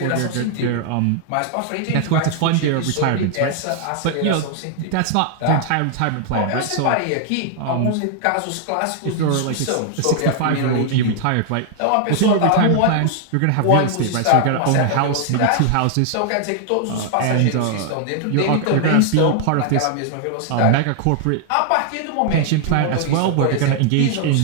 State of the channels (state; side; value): different; both; correlation 0.00